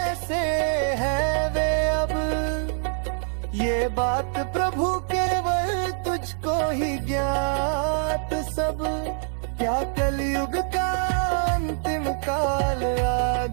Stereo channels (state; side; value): silent; left; 62 dB below the other